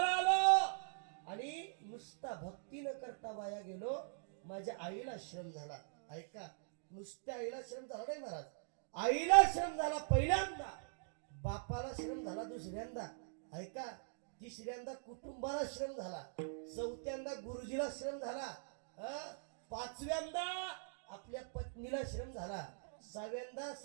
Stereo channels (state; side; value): silent; left; digital silence